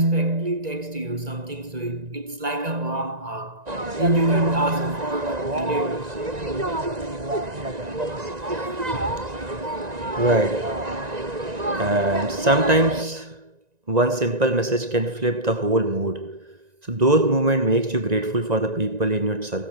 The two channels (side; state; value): left; late; 1.9 ms